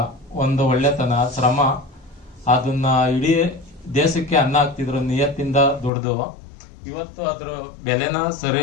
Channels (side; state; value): right; drops out; at 5.9 s